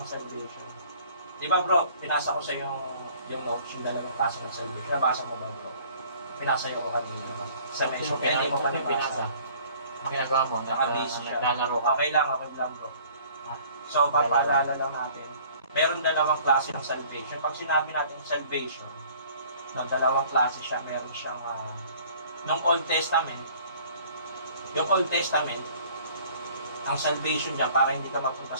salvation. Di ba bro, pinasa ko sa iyo yung notes, yung dalawang klase ng salvation. Nabasa mo ba bro? Pinasa ko kanina. Salvation, kaya hindi mo pa nabasa. Ang ginagawa mo, Nakabase siya. naglalaro ka. Okay lang bro. So, papaalala lang natin, meron dalawang klase ng salvation. Pag sinabi natin salvation, no, dalawang klase siya, meron siyang nung Old Testament, yung Old Testament, ang salvation dyan para hindi ka mapunta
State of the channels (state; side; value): inverted; both; correlation -0.53